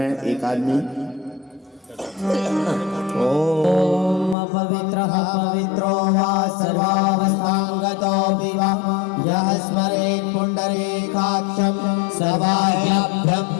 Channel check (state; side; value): drops out; right; at 4.4 s